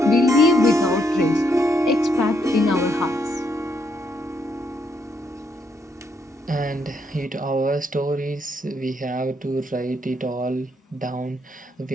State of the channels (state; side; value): normal; both; correlation 0.75